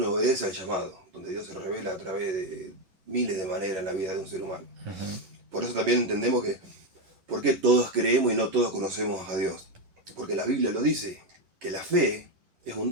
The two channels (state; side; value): late; left; 11 ms